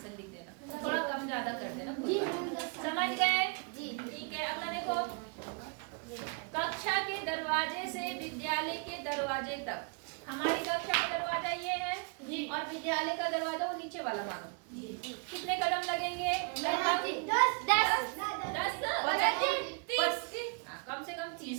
लिख देना, थोड़ा कम ज्यादा कर देना, कोई बात नहीं। समझ गए? ठीक है। अगला देखो, कक्षा के दरवाजे से विद्यालय के दरवाजे तक। हमारी कक्षा का दरवाजा ये है और विद्यालय का दरवाजा वो नीचे वाला मानो, कितने कदम लगेंगे? लगभग 10। कम से कम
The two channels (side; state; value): left; quieter; 35.9 dB